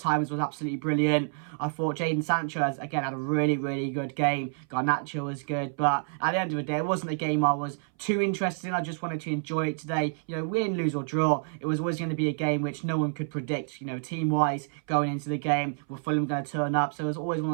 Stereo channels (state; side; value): silent; left; 58 dB below the other